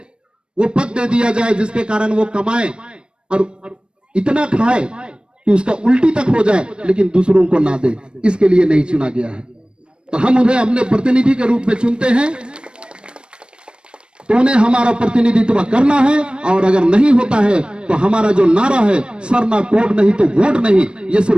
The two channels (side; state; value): left; late; 0.055 ms